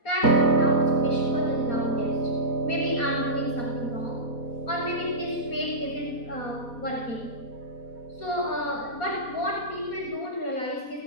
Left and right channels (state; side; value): late; right; 4.2 ms